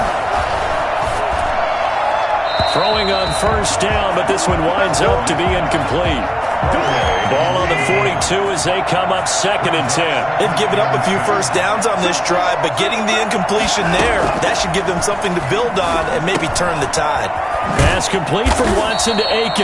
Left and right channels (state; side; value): identical; both; correlation 1.00